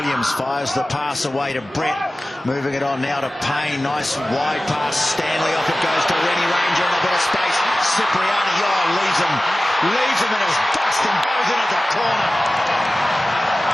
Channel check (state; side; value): normal; both; correlation 0.96